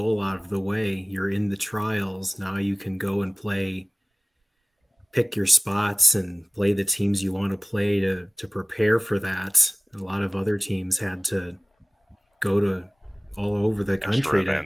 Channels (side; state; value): both; normal; correlation 0.97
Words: out of the way. You're in the trials. Now you can go and pick your spots and play the teams you want to play to prepare for that. A lot of other teams had to go to all over the country